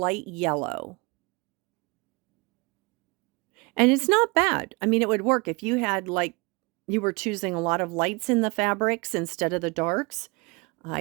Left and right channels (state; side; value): quieter; left; 27.8 dB